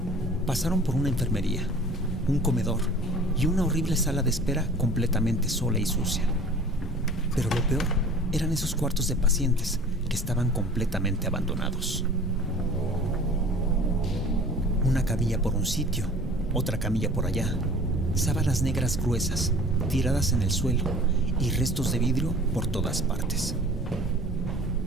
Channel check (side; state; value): both; normal; correlation 0.46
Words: Pasaron por una enfermería, un comedor y una horrible sala de espera completamente sola y sucia. Pero lo peor eran esos cuartos de pacientes que estaban completamente abandonados. Una camilla por un sitio, otra camilla por allá, sábanas negras gruesas tiradas en el suelo y restos de vidrio por todas partes.